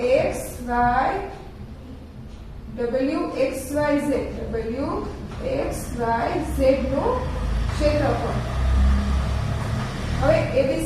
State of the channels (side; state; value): both; identical; correlation 1.00